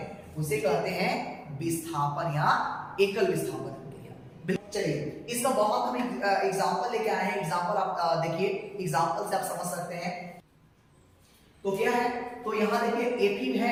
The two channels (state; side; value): identical; both; correlation 1.00